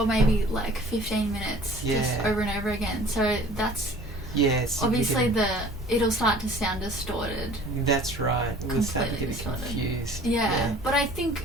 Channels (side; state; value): both; normal; correlation 0.48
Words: maybe like 15 minutes just over and over again. So that's obviously it'll start to sound distorted. That's right. We'll start to get distorted. confused. Yeah. But I